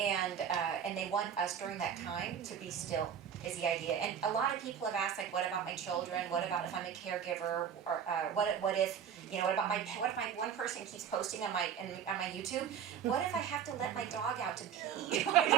they want us during that time to be still, is the idea. And a lot of people have asked, like, what about my children? What about if I'm a caregiver? Or what if one person keeps posting on my YouTube? What if I have to let my dog out to pee? And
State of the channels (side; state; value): left; quieter; 8.3 dB